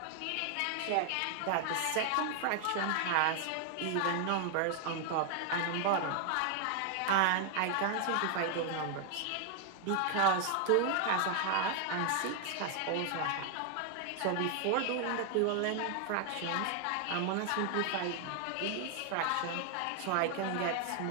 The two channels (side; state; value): both; different; correlation 0.00